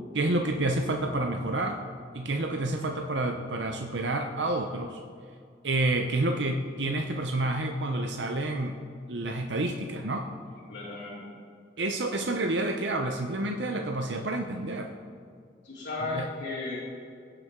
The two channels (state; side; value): normal; both; correlation 0.38